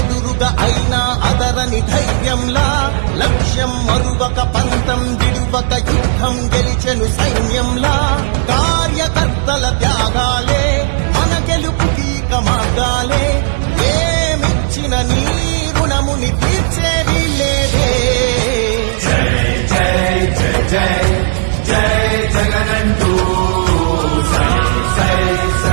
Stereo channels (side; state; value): left; silent; digital silence